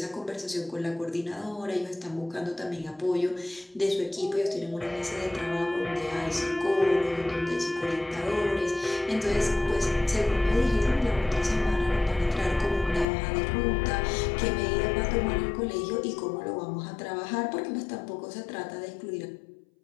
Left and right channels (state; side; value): drops out; right; at 13.1 s